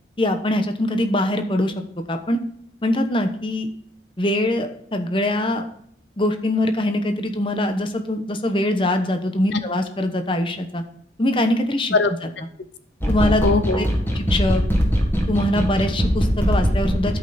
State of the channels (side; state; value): both; normal; correlation 0.70